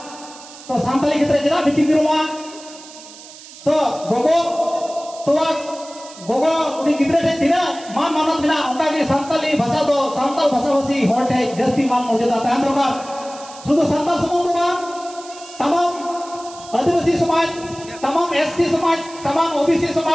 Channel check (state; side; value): noise; right; hiss, 18 dB below the sound